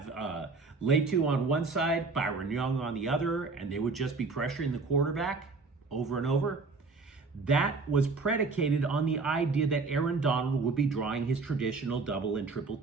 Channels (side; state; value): left; quieter; 4.1 dB